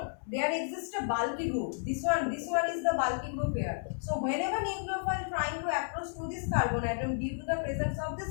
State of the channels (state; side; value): silent; right; 56 dB below the other